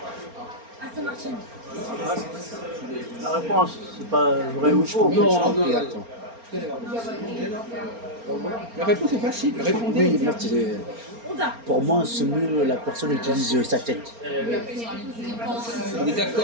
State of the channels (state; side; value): late; left; 4.3 ms